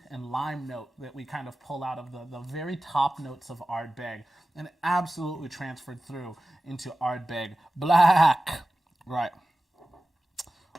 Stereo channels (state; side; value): normal; both; correlation 0.95